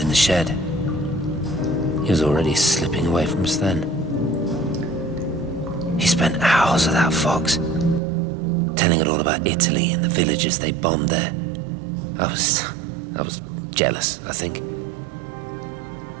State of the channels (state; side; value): drops out; left; at 8.0 s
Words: the shed. He was already slipping away from us then. He spent hours with that fox, telling it all about Italy and the villages they bombed there. I was jealous, I think.